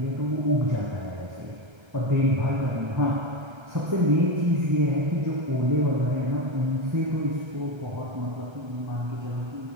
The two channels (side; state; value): left; late; 1.3 ms